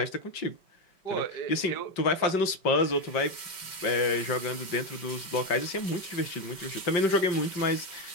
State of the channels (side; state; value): right; late; 5.3 ms